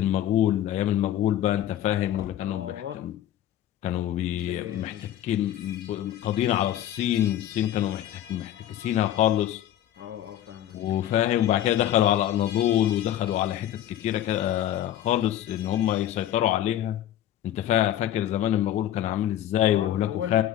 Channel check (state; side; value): quieter; right; 12.0 dB